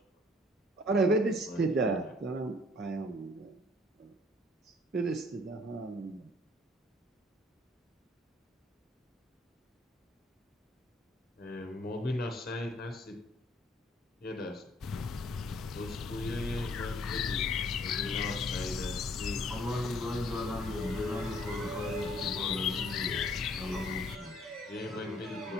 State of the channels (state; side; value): normal; both; correlation 0.60